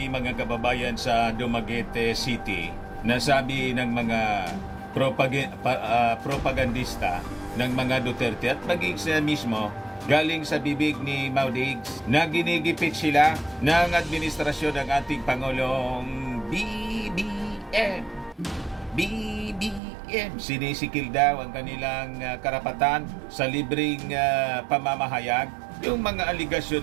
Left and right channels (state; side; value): drops out; left; at 19.8 s